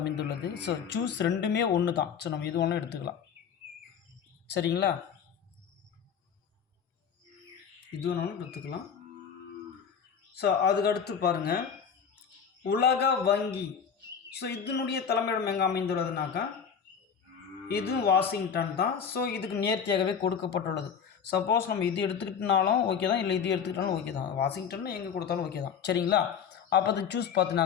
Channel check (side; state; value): right; quieter; 7.1 dB